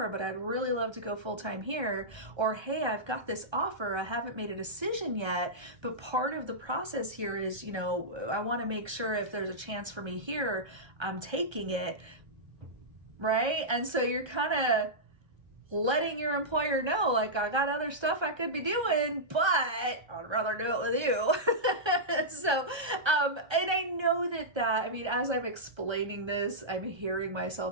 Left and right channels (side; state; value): left; late; 1.3 ms